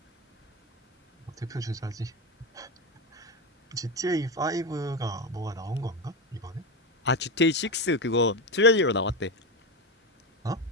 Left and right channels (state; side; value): normal; both; correlation 0.15